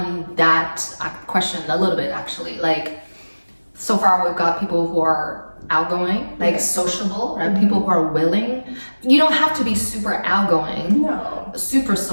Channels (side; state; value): both; inverted; correlation -1.00